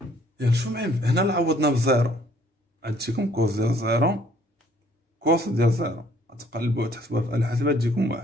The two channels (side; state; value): both; normal; correlation 0.61